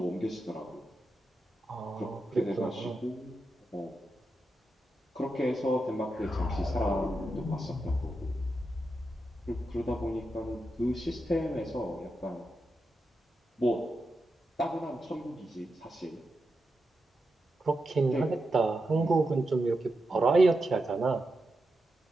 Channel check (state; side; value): normal; both; correlation 0.88